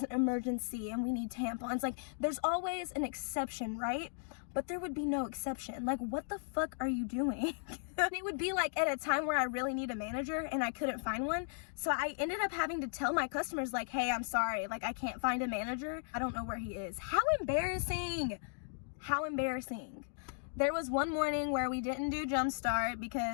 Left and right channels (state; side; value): silent; right; digital silence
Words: an emergency and we need tampons. Like, there's always an exception, right? But there would be no exception. Like, what the fuck are you doing? It would be like at a time where I really need a manager and I couldn't find one. So I ended up having to tell my customers, like, hey, I'm sorry, like, I can't find a manager. I don't know where he is. How embarrassing. How embarrassing. There was one morning where we didn't do Jumpstart